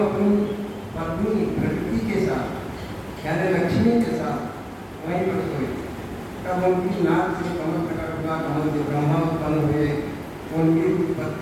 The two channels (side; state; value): both; identical; correlation 1.00